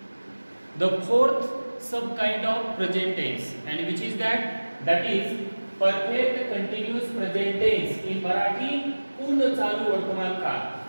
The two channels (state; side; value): inverted; both; correlation -1.00